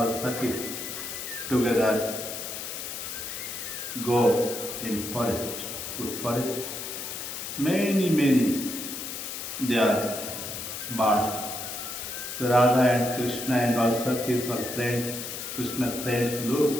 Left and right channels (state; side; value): noise; left; hiss, 6 dB below the sound